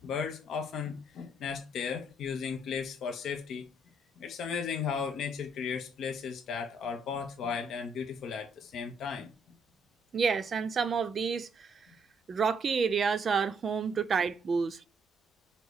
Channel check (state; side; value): normal; both; correlation 0.69